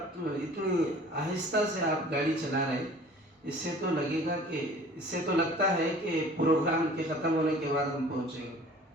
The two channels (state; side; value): normal; both; correlation 0.47